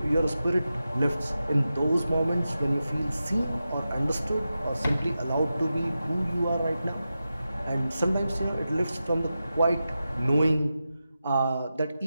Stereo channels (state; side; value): inverted; both; correlation -0.91